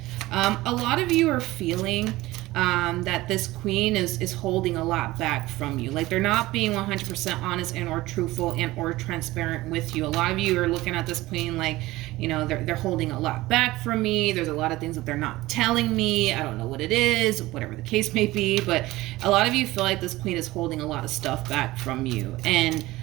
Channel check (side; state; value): left; quieter; 18.4 dB